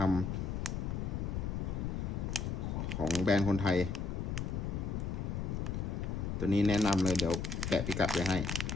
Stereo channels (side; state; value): left; noise; rumble, 2 dB below the sound